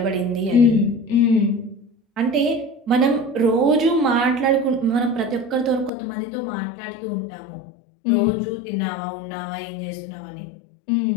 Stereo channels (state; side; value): drops out; right; at 5.9 s